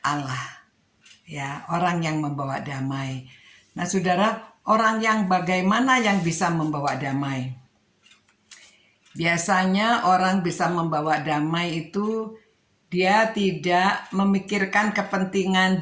Allah. Ya, orang yang membawa damai. Nah, saudara, orang yang bagaimana yang bisa membawa damai? Biasanya orang bisa membawa damai itu dia tidak memikirkan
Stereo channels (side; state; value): both; identical; correlation 1.00